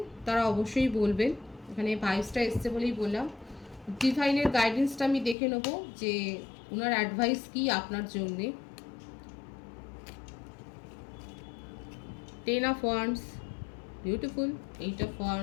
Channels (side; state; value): right; drops out; at 5.4 s